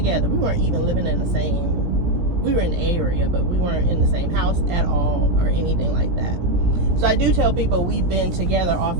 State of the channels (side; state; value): left; late; 17 ms